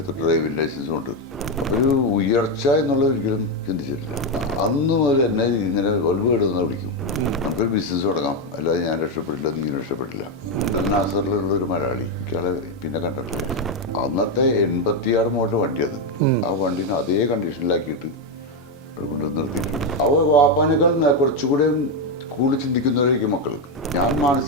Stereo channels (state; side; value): normal; both; correlation 0.06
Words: ഡ്രൈവിംഗ് ലൈസൻസും ഉണ്ട്. അപ്പോൾ ഒരു ഉയർച്ച എന്നുള്ളത് ഒരിക്കലും ചിന്തിച്ചിട്ടില്ല. അന്ന് മുതൽ എന്നെ ഇങ്ങനെ വലുവേടുന്ന വിളിക്കും. നമുക്കൊരു ബിസിനസ് തുടങ്ങാം, അല്ലാതെ ഞാൻ രക്ഷപ്പെട്ടില്ല, നീ രക്ഷപ്പെട്ടില്ല. നാസറിലുള്ളൊരു മലയാളി, എനിക്കാളെ പിന്നെ കണ്ടിട്ടില്ല. അന്നത്തെ 86 മോഡൽ വണ്ടി അത്. ആ വണ്ടീനെ അതേ കണ്ടീഷനിലാക്കിയിട്ട് അവിടെ കൊണ്ട് നിർത്തിയിട്ടുണ്ട്. വാപ്പാനേക്കാൾ കുറച്ചുകൂടെ കൂടുതൽ ചിന്തിക്കുന്നവരായിരിക്കും മക്കൾ. ഞാൻ